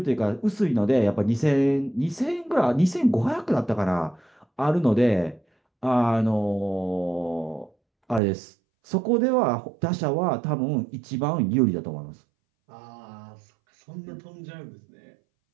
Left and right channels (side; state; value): left; drops out; at 8.2 s